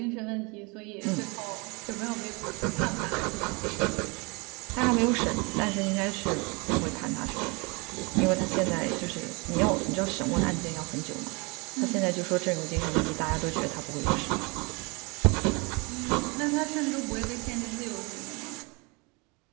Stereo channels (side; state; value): left; quieter; 29.0 dB